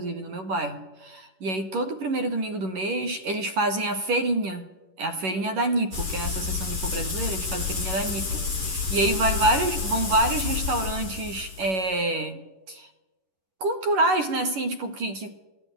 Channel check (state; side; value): late; left; 11 ms